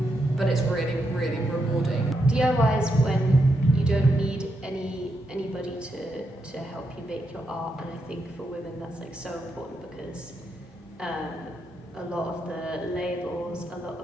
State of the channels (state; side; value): normal; both; correlation 0.82